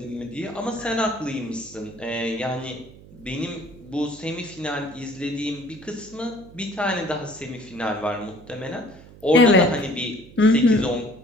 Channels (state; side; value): noise; right; hum, 20 dB below the sound